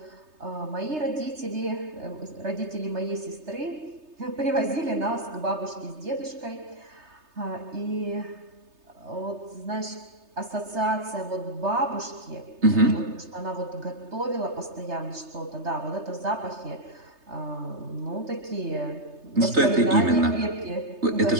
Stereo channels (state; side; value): late; left; 3.3 ms